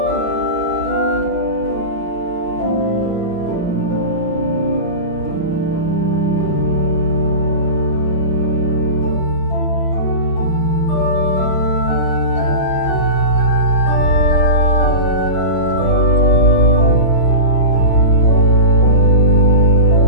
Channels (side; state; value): right; late; 5.6 ms